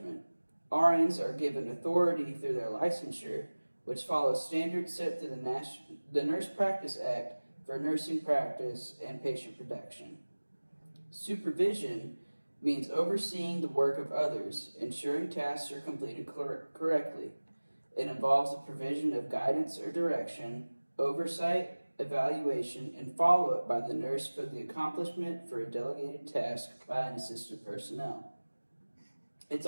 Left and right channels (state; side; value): inverted; both; correlation -1.00